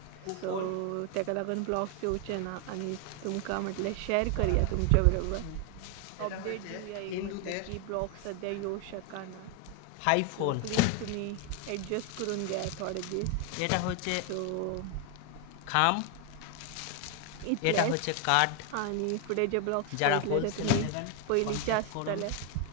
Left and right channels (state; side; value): different; both; correlation 0.01